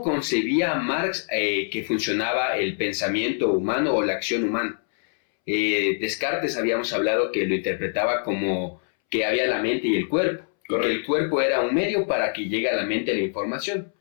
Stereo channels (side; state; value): right; silent; 62 dB below the other